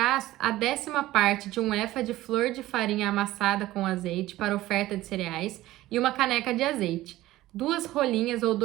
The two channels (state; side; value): quieter; left; 16.2 dB